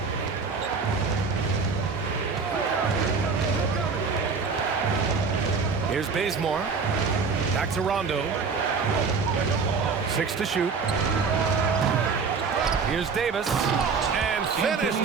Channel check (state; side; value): quieter; left; 5.0 dB